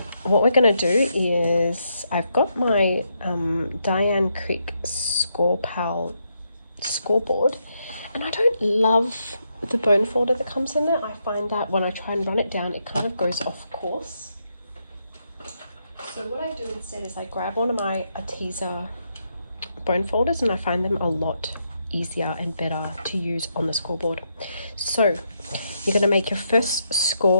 what we're going to do is, I've got my Diane Creek scoreboard, and I don't love the bone folder that comes in there. I find that when I try and run it down, it kind of goes off course. So what I do instead is I grab one of my Arteza bone folders, and I find them a lot easier and better to use on the scoreboard. So you're going to make your first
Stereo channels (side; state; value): both; inverted; correlation -0.80